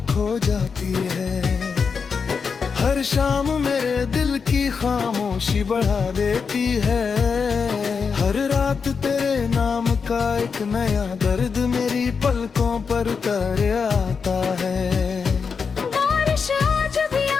खो जाती है। हर शाम मेरे दिल की खामोशी बढ़ा देती है। हर रात तेरे नाम का एक नया दर्द मेरी पलकों पर उतर आता है। बारिश आज भी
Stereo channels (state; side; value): quieter; right; 5.6 dB